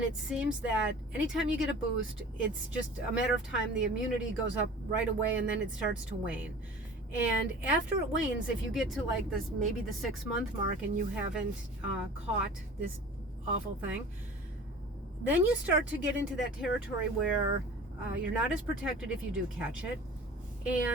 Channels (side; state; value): both; normal; correlation 0.41